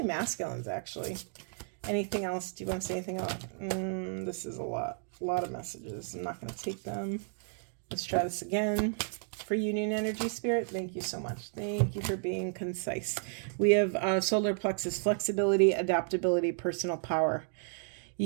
masculines, actually. Anything else? Do you want to say anything else? This is a lot of messages. I'm not going to take them. Let's try this again. For union energy, spirit, thank you so much. Thank you for being concise. We have solar plexus, flexibility, adaptability, personal power.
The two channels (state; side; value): silent; left; 56 dB below the other